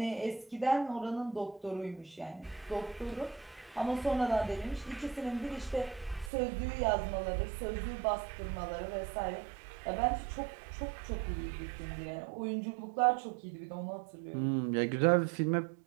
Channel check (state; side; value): drops out; left; at 6.3 s